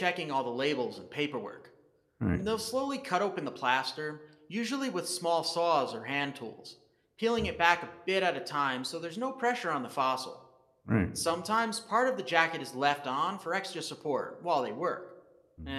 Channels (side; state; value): both; identical; correlation 1.00